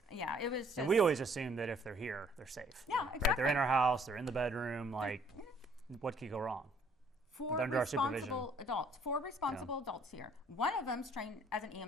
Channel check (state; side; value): normal; both; correlation 0.61